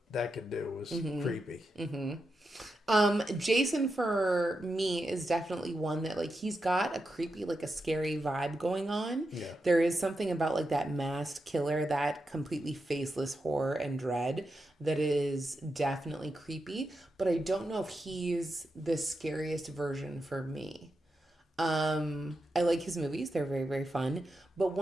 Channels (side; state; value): both; normal; correlation 0.87